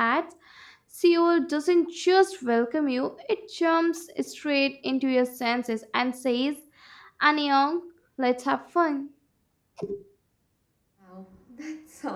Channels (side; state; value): both; identical; correlation 1.00